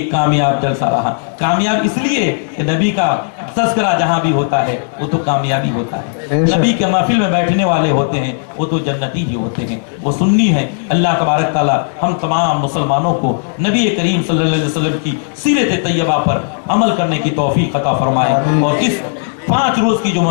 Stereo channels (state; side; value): silent; right; digital silence